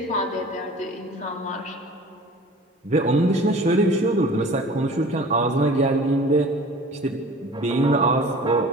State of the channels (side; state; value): both; normal; correlation 0.43